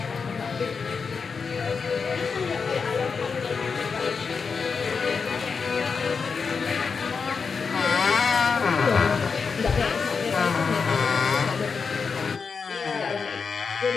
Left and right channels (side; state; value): right; quieter; 5.4 dB